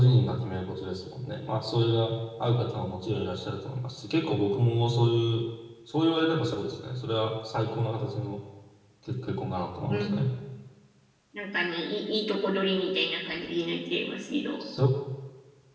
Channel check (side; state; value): both; identical; correlation 1.00